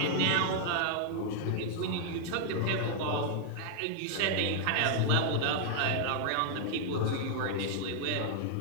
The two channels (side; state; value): both; different; correlation -0.01